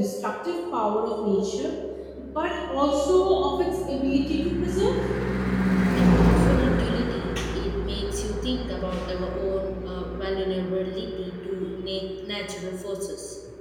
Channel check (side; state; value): both; identical; correlation 1.00